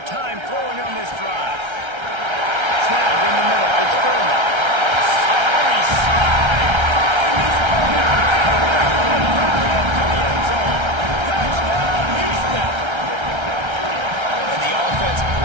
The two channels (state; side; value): late; left; 1.3 ms